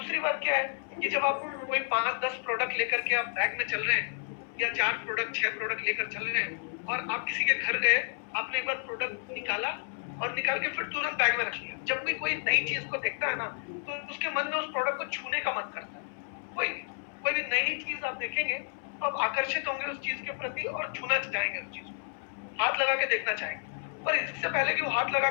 बात क्या है कि जब आप कोई 5-10 प्रोडक्ट लेकर के आप बैग में चल रहे हैं, या 4 प्रोडक्ट 6 प्रोडक्ट लेकर चल रहे हैं, और आप किसी के घर गए, आपने एक बार प्रोडक्ट निकाला और निकाल के फिर तुरंत बैग में रख लिया। जब भी कोई नई चीज को देखता है ना, तो उसके मन में उस प्रोडक्ट को छूने का मन करता है। कोई भी नई चीज आप देखेंगे तो आप आकर्षित होंगे उस चीज के प्रति और छूना चाहेंगे, उस चीज को हाथ लगा के देखना चाहेंगे। पर इससे पहले कि वो हाथ लगा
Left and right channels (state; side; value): silent; right; 57 dB below the other